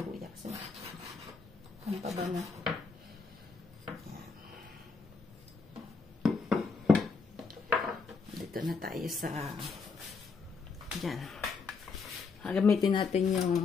luya kasi ang pabango. Dito na tayo sa dyan. Gamitin natin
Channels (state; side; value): quieter; right; 4.7 dB